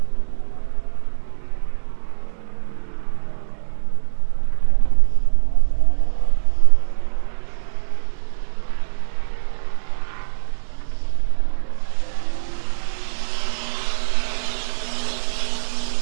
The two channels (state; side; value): silent; left; digital silence